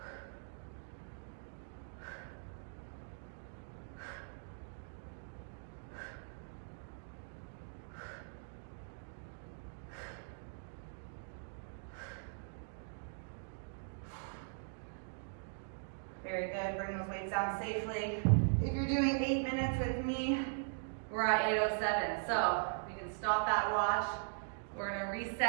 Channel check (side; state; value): left; silent; digital silence